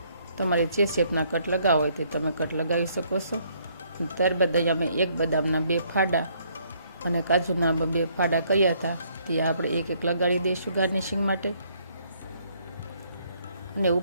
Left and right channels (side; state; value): both; inverted; correlation -0.67